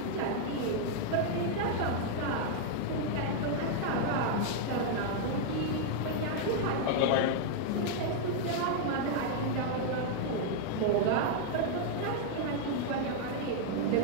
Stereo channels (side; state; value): both; different; correlation -0.01